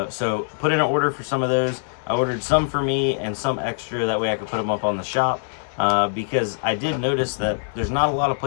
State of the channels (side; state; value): right; silent; 60 dB below the other